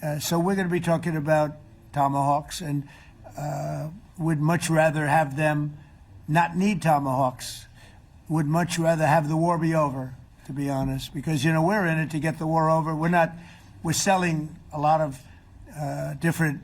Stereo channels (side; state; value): both; identical; correlation 1.00